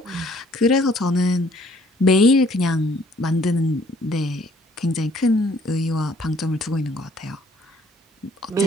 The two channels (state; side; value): normal; both; correlation 0.61